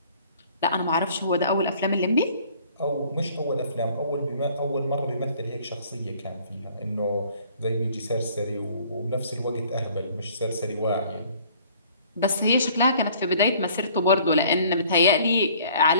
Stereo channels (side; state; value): both; inverted; correlation -0.55